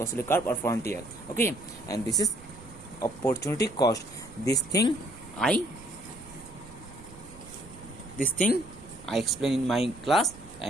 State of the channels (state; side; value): noise; right; rumble, 19 dB below the sound